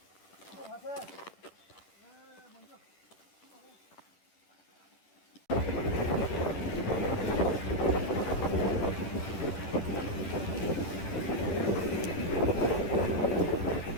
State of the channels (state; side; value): late; right; 10 ms